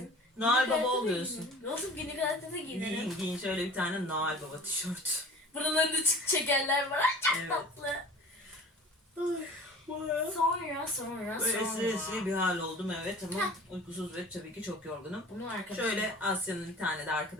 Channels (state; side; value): normal; both; correlation 0.43